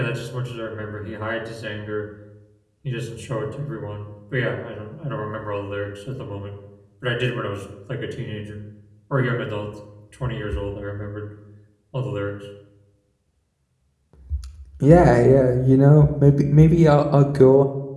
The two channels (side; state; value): both; identical; correlation 1.00